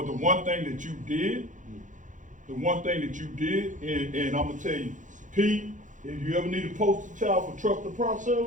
the one thing that you did, and I'm gonna tell you, Pete, if you ever need a poster child for trust the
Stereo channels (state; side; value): late; left; 0.37 ms